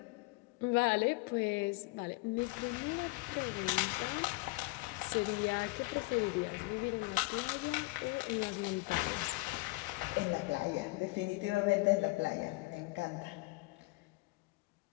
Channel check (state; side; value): quieter; right; 24.1 dB